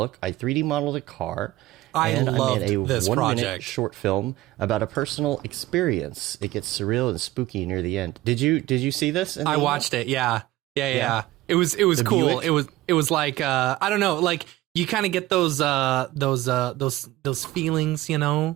I 3D modeled a car. I made a this 1 minute project. Short film about a personal experience. It gets surreal and spooky near the end. Did you see this? I watched it. Yeah. It was cool. Buick? It was like I don't know, like you kind of get those feelings, you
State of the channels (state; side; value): quieter; left; 16.6 dB